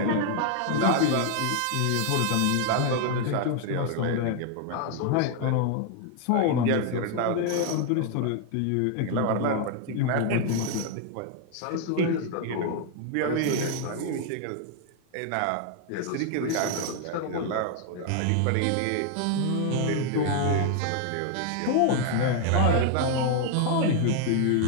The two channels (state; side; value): different; both; correlation 0.00